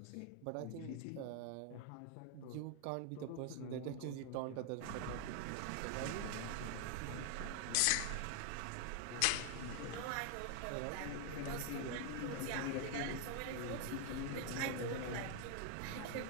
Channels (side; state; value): both; different; correlation 0.00